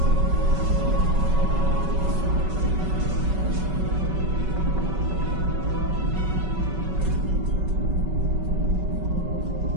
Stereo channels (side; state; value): left; late; 5.3 ms